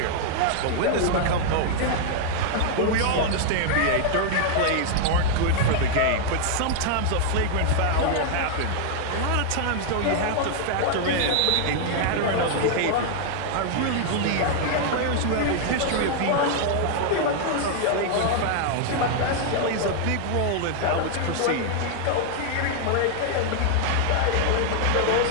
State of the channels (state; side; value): different; both; correlation 0.00